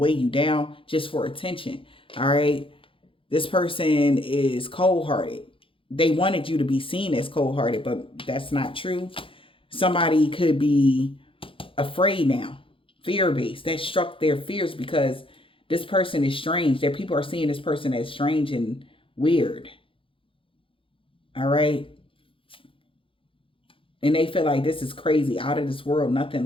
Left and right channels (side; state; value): right; late; 0.26 ms